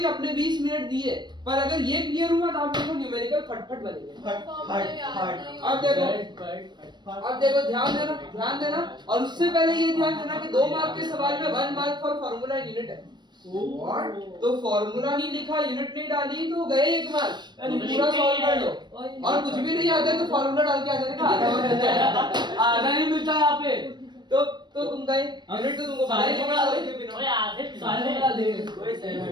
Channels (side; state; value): left; late; 0.21 ms